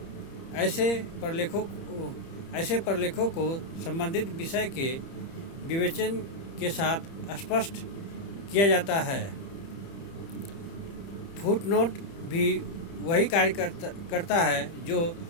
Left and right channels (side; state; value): right; late; 30 ms